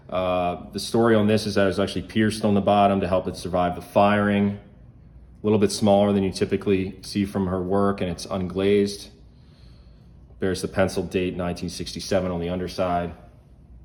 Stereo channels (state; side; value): identical; both; correlation 1.00